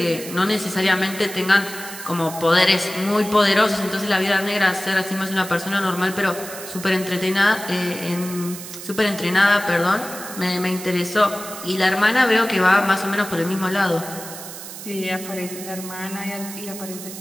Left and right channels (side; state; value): right; noise; hiss, 11 dB below the sound